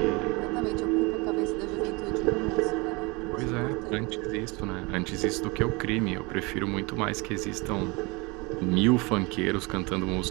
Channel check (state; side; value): quieter; left; 26.6 dB